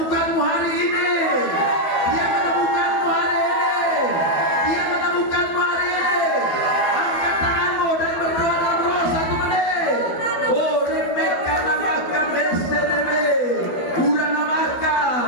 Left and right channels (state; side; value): late; right; 12 ms